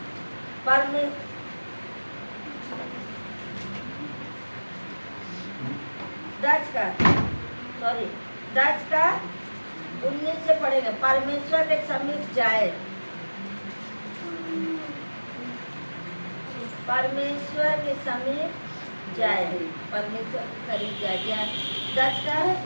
परमेश्वर 10 का 19 से पढ़ेंगे। परमेश्वर के समीप जाए, परमेश्वर के समीप जाए, परमेश्वर के करीब जाए। 10 का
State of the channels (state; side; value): inverted; both; correlation -1.00